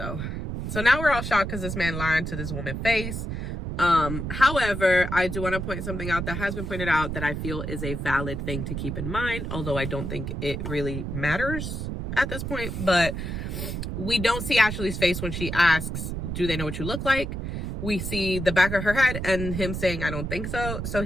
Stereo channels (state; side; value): noise; right; rumble, 4 dB below the sound